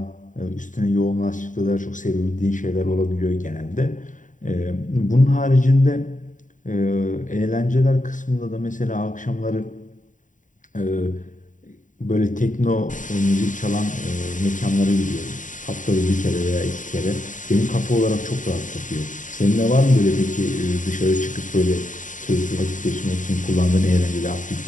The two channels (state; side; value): late; right; 0.37 ms